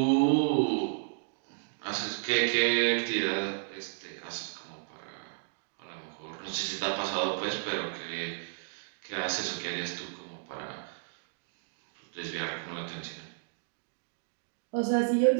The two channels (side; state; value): left; silent; digital silence